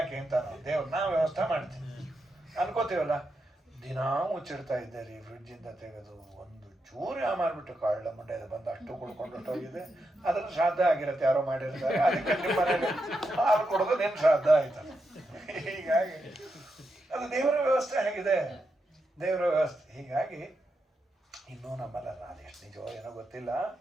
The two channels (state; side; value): normal; both; correlation 0.85